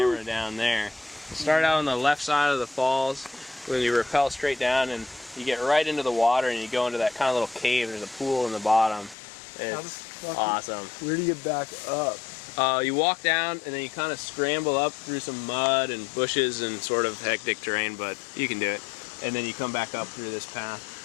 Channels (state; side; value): drops out; right; at 9.2 s